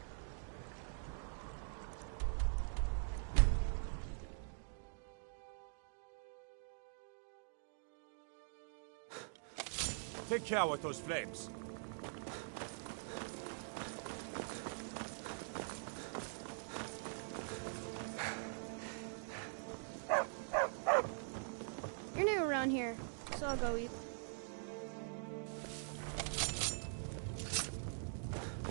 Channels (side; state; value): left; silent; digital silence